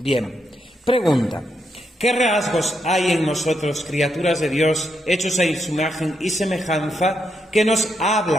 pregunta: ¿qué rasgos hay en nosotros, criaturas de Dios, hechos a su imagen y semejanza, que nos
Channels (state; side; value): normal; both; correlation 0.80